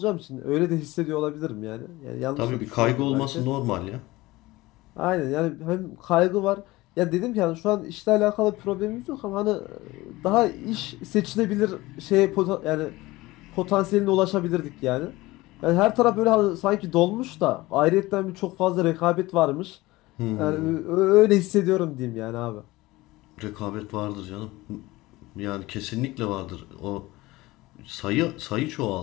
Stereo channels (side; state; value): right; quieter; 19.7 dB